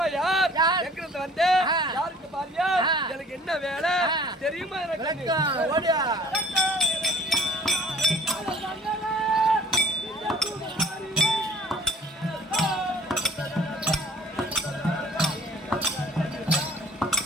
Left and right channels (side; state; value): both; normal; correlation 0.52